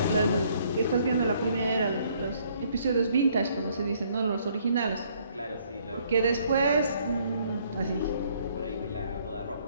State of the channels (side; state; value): both; inverted; correlation -0.65